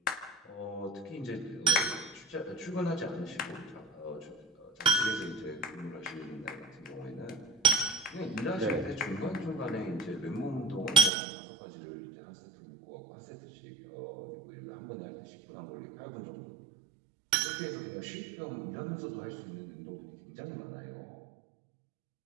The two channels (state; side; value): drops out; left; at 11.1 s